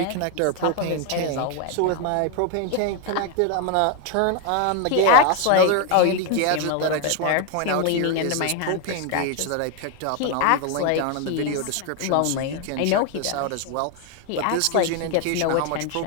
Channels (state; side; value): different; both; correlation 0.01